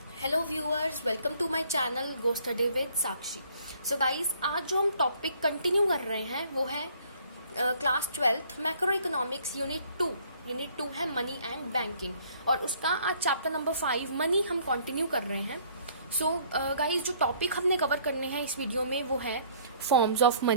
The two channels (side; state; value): both; inverted; correlation -0.60